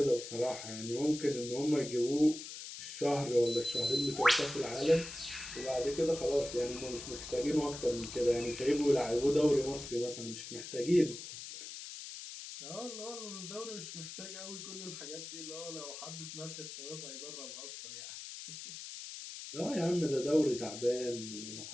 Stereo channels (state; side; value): noise; left; hiss, 10 dB below the sound